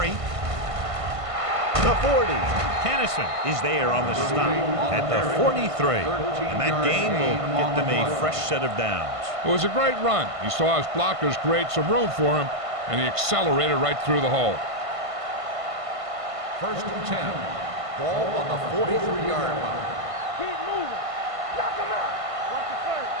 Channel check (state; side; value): late; left; 1.5 ms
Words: the 40. Kennison is there on the stop at the 43. And that gain will get them a fresh set of downs. It was a great run. He saw his blockers create some room for him, and he accelerated right through the hole. 1st and 10. Ball on the 43-yard line. Keep moving. Knock him out. Watch the play.